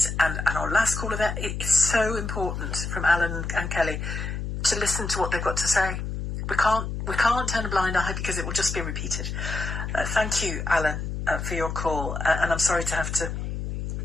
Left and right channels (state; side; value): noise; left; hum, 4 dB below the sound